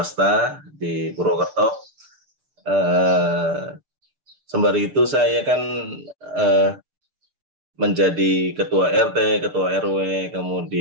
di Purwokerto. Sembari itu saya kan menjadi ketua RT, ketua RW,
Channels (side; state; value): left; late; 6.7 ms